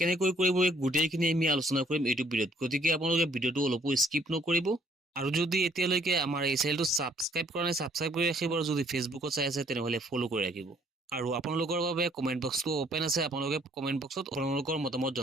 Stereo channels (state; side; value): normal; both; correlation 0.64